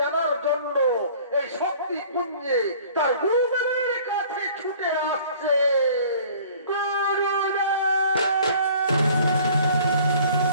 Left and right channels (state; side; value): inverted; both; correlation -0.51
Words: জন্য এই শক্তি পুঞ্জে তার গুরুদেবের কাছে ছুটে আসছে।